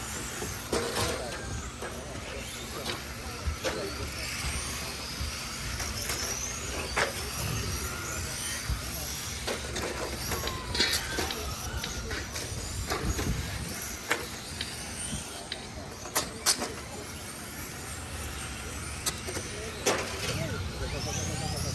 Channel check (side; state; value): both; identical; correlation 1.00